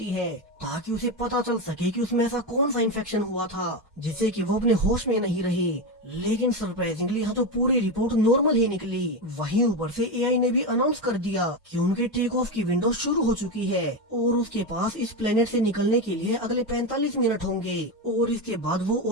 है ताकि उसे पता चल सके कि उसमें ऐसा कौन सा इन्फेक्शन हुआ था जिससे कि वो अपने होश में नहीं रही। लेकिन सरप्राइजिंगली यहाँ तो पूरी रिपोर्ट नॉर्मल ही निकली। वहीं ऊपर से एआई ने भी अनाउंस कर दिया कि उनके टेक ऑफ की विंडो शुरू हो चुकी है और उसके पास इस प्लेनेट से निकलने के लिए अगले 45 मिनट होंगे और इसके बाद वो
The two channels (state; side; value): normal; both; correlation 0.14